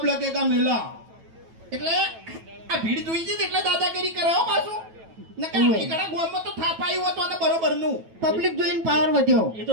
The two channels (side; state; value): left; late; 9.1 ms